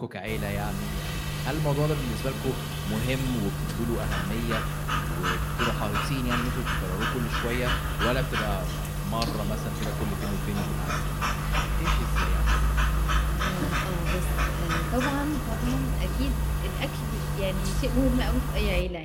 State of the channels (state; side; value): identical; both; correlation 1.00